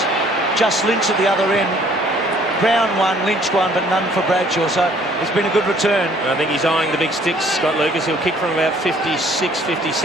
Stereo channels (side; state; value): both; normal; correlation 0.59